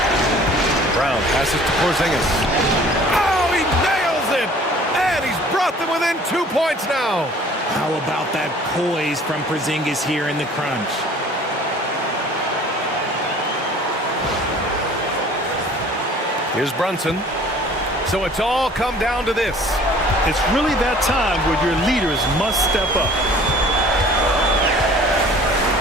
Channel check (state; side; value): normal; both; correlation 0.50